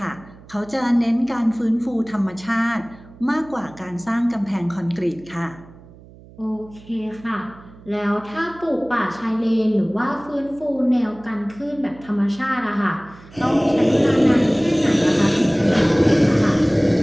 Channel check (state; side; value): noise; right; hum, 22 dB below the sound